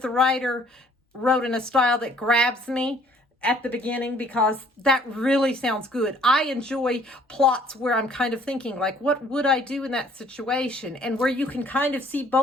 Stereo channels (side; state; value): both; normal; correlation 0.58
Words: the writer wrote in a style that grabs me at the beginning, because that really sounds good. I enjoy plots where I'm kind of thinking, like, what would I do in that situation? And where you can kind of see